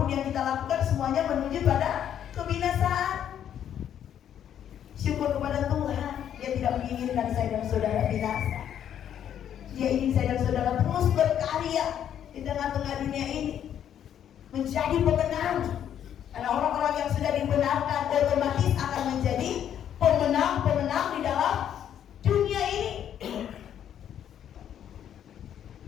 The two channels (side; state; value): right; quieter; 9.8 dB